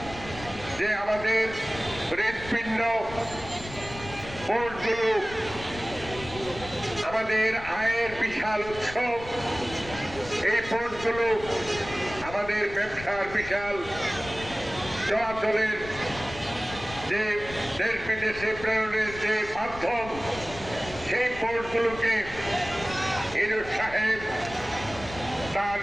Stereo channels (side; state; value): left; noise; rumble, 14 dB below the sound